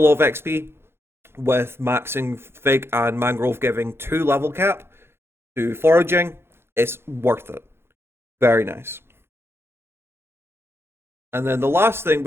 of XP, with maxing Fig and Mangrove giving 2 level cap to Foraging. It's worth it. Very nice. And then the last thing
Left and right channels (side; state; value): left; late; 0.12 ms